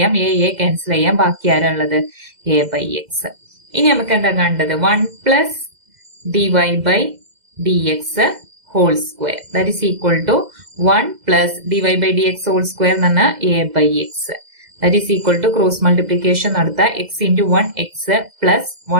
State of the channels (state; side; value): late; left; 2.0 ms